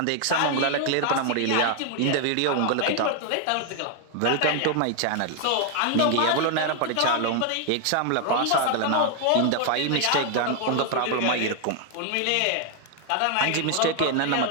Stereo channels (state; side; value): different; both; correlation 0.00